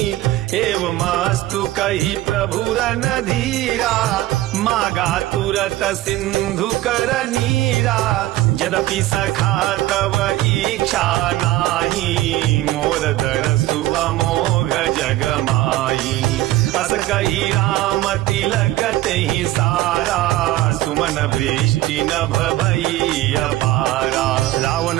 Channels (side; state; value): left; quieter; 15.9 dB